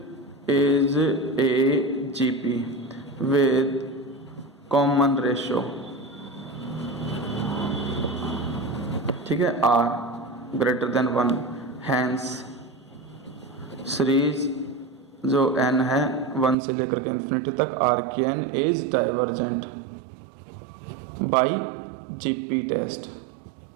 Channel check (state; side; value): drops out; left; at 16.6 s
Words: is a GP with common ratio, ठीक है, r greater than 1। Hence series जो n है 1 से लेकर के इन्फिनिटी तक r की n is divergent by GP test,